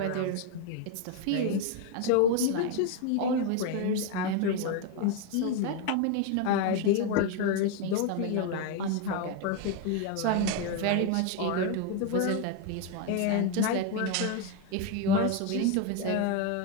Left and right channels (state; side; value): different; both; correlation 0.01